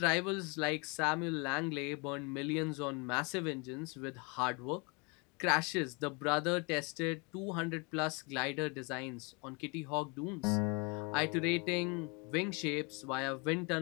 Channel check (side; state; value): right; quieter; 30.9 dB